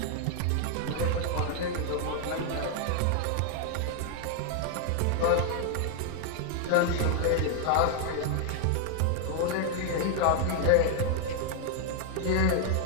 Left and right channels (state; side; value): different; both; correlation 0.00